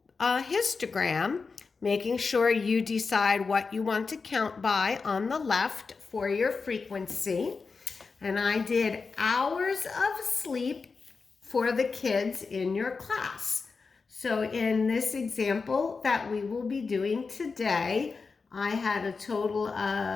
histogram, making sure you decide what you want to count by on the left for your frequency. And I did hours of sleep for the kids in your class. So in this example that we will be doing today, I had a total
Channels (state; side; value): quieter; right; 4.7 dB